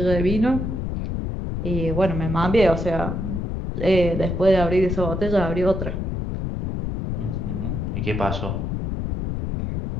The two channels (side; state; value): left; noise; rumble, 3 dB below the sound